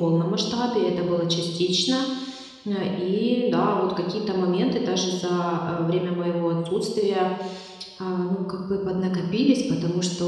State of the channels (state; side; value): identical; both; correlation 1.00